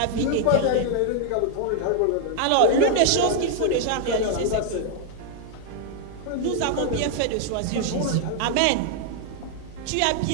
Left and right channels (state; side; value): different; both; correlation 0.00